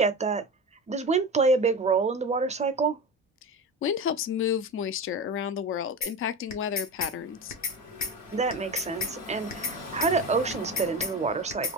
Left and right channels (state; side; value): normal; both; correlation 0.25